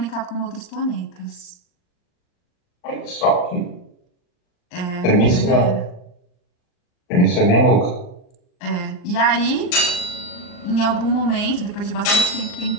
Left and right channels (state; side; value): late; right; 39 ms